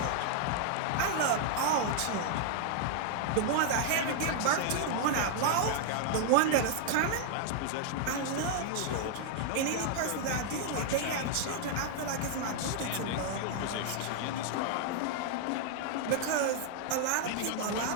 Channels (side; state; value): both; different; correlation -0.01